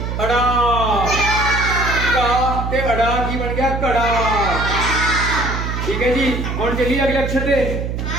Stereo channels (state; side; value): noise; right; hum, 3 dB below the sound